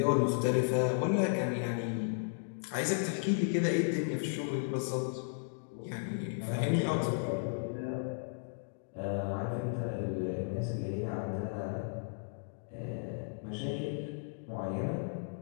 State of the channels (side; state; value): right; silent; digital silence